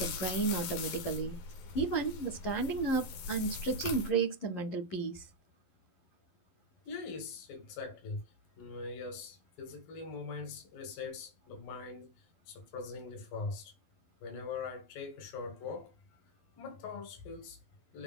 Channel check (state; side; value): late; right; 11 ms